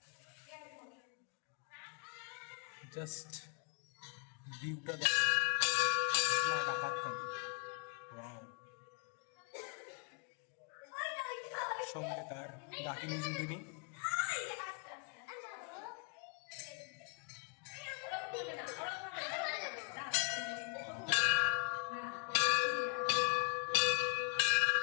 জাস্ট ভিউটা দেখো, মা ডাকাত কালী। সঙ্গে তার ডাকিনী যুগিনী।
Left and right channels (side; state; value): right; quieter; 38.8 dB